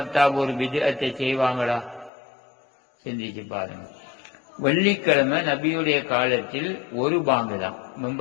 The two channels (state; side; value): drops out; right; at 2.1 s